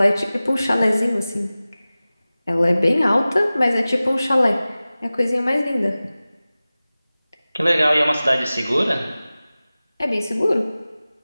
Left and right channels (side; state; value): both; inverted; correlation -0.97